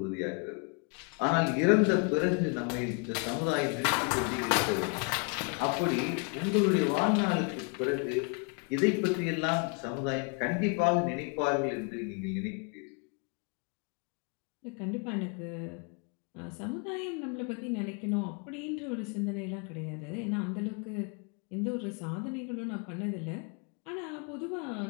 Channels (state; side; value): quieter; right; 34.4 dB